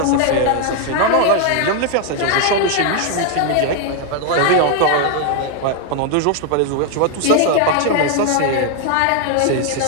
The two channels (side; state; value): both; different; correlation 0.00